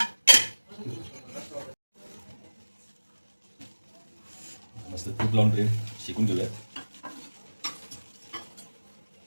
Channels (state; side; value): inverted; both; correlation -1.00